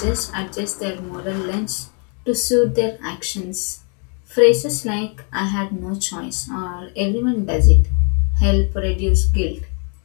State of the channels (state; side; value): quieter; right; 38.8 dB